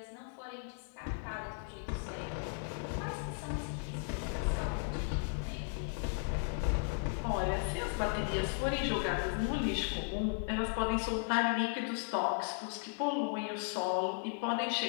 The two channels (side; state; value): right; silent; 54 dB below the other